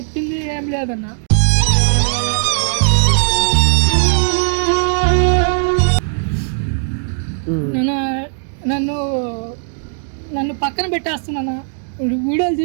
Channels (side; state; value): left; silent; digital silence